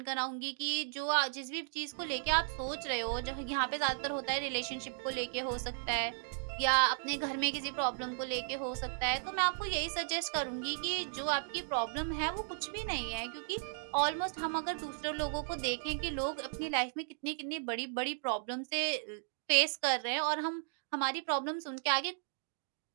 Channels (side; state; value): left; silent; digital silence